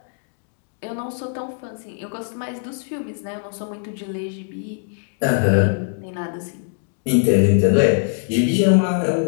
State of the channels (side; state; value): right; silent; 64 dB below the other